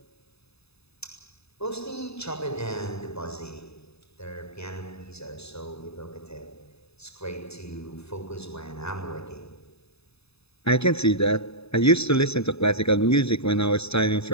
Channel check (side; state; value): right; late; 0.79 ms